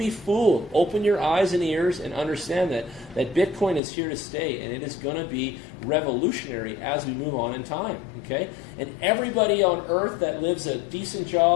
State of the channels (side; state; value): right; drops out; at 3.8 s